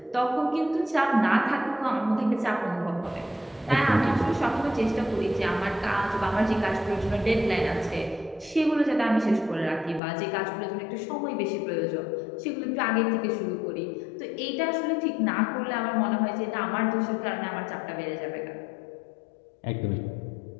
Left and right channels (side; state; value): right; drops out; at 10.0 s